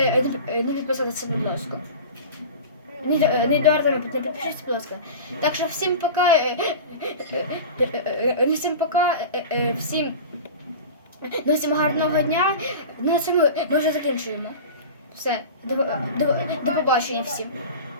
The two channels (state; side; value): inverted; both; correlation -0.33